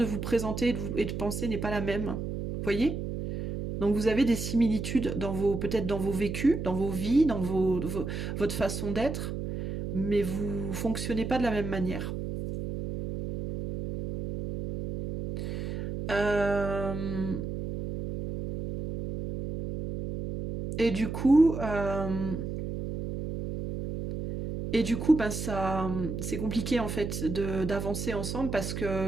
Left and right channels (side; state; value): right; noise; hum, 5 dB below the sound